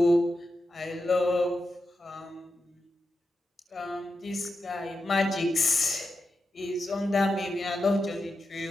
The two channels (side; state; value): both; normal; correlation 0.89